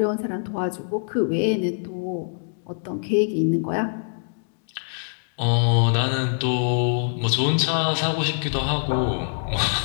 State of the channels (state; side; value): silent; right; digital silence